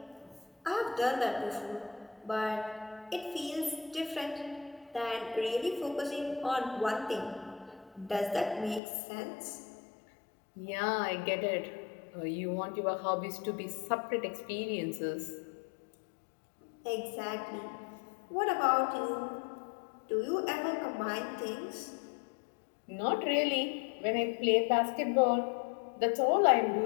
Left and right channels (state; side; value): drops out; right; at 8.8 s